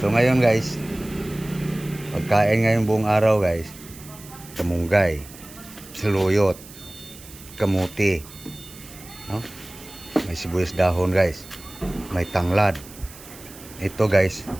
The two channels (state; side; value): noise; right; hiss, 18 dB below the sound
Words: So ngayon guys, pagkain ngayong buong araw guys, kamunggay, saluyot, kamuti, no? May sibuyas dahon guys, may tanglad. Ito guys,